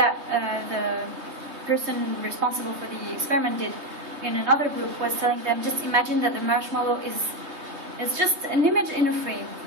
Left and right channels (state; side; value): late; left; 3.2 ms